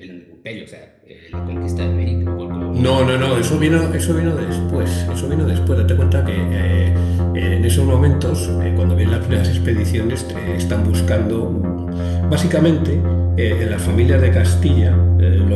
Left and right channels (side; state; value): both; identical; correlation 1.00